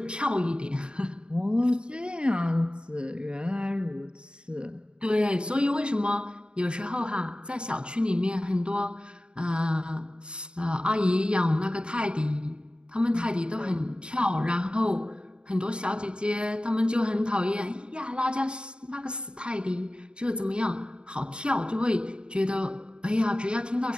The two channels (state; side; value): late; left; 0.052 ms